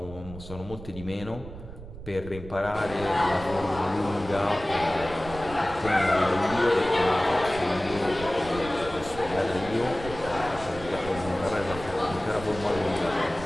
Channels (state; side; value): noise; right; rumble, 13 dB below the sound